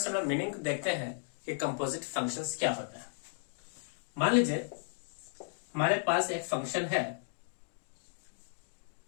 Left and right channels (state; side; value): silent; right; digital silence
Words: हम लोग मीनिंग देखते हैं कि कंपोजिट फंक्शंस क्या होता है। मान लीजिए हमारे पास एक फंक्शन है,